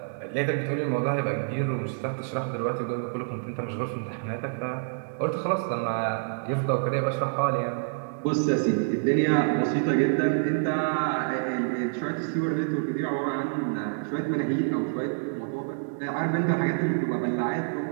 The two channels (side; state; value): left; silent; digital silence